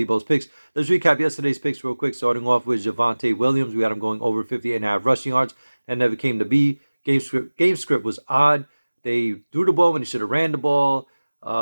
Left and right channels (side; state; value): both; inverted; correlation -1.00